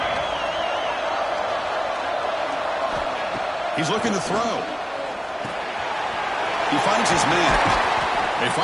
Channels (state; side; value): identical; both; correlation 1.00